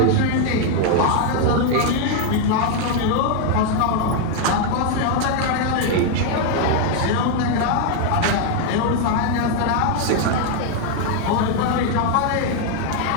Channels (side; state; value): both; different; correlation 0.00